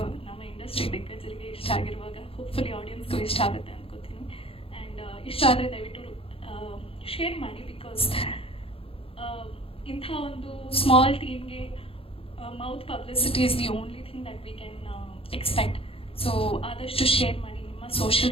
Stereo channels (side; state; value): right; late; 0.27 ms